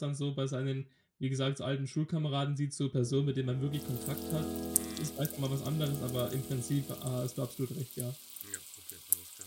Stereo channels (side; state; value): both; identical; correlation 1.00